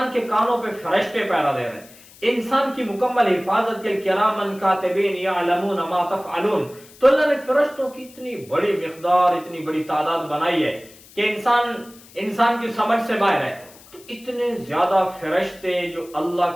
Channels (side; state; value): left; noise; hiss, 23 dB below the sound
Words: کے کانوں پہ فرشتے پیرا دے رہے ہیں. انسان کی مکمل حفاظت کے کرامن کاتبین یعلمون ما تفعلون. تو اللہ نے فرشتوں کی اتنی بڑی مقدار، اتنی بڑی تعداد بنائی ہے کہ انسان کی سمجھ سے باہر ہے. تو اتنے زیادہ فرشتے جو اللہ